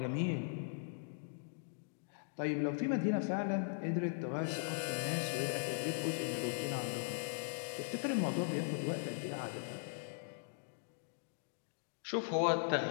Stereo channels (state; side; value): silent; right; digital silence